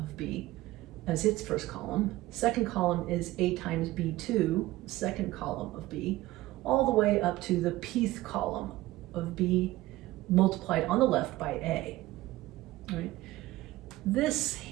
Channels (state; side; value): quieter; left; 17.5 dB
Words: B, as its first column. Second column is A times B2, second column of B, all the way up to the pth column of B multiplied on the left by A. Right? This